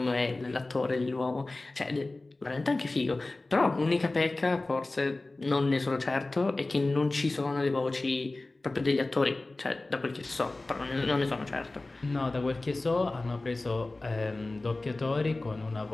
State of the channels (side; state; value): right; quieter; 3.0 dB